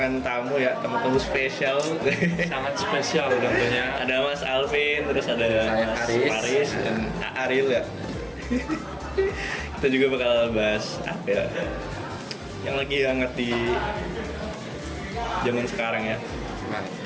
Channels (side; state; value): both; identical; correlation 1.00